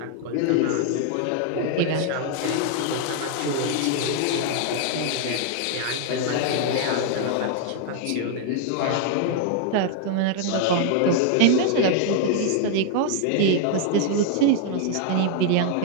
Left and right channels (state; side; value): different; both; correlation 0.00